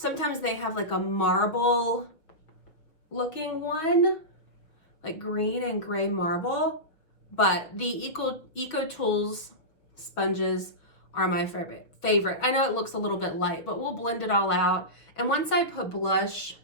they have a marble looking one, like green and gray marble, but the EcoTools sponges are my favorite. I know it looks a little bit light, but we'll blend it all out. And once I put blush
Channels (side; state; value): right; late; 6.0 ms